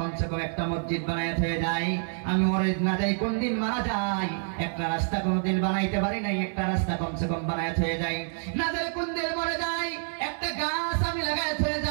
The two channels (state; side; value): silent; left; 60 dB below the other